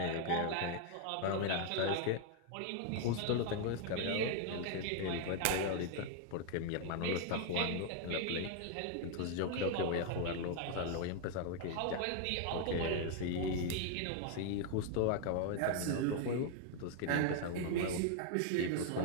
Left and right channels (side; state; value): both; different; correlation 0.00